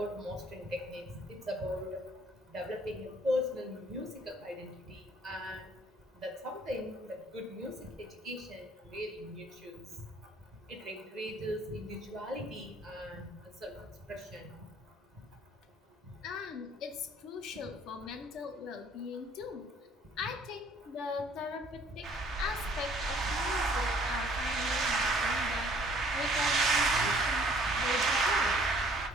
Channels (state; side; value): normal; both; correlation 0.58